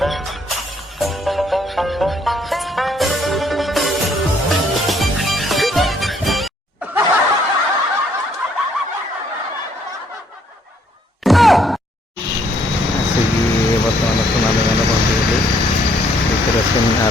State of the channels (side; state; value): both; normal; correlation 0.67